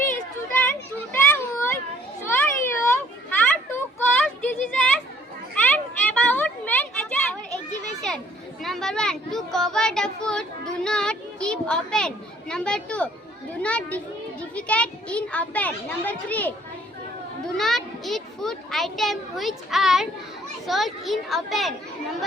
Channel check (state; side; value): normal; both; correlation 0.59